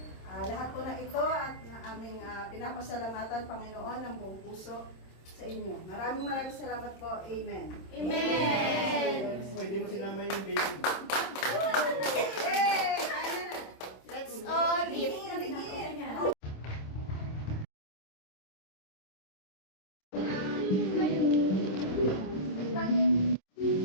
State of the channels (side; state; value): right; late; 26 ms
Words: Lahat po na ito at na aming pinapasalamatan, Panginoon, ng buong puso sa inyo. Maraming salamat po. Amen. Amen. Hindi mo sinama yung baby. Hey! Let's all eat.